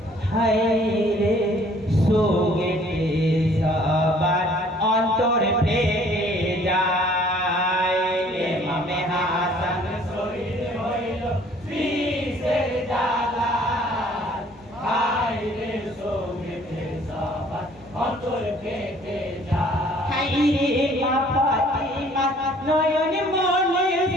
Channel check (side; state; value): both; normal; correlation 0.57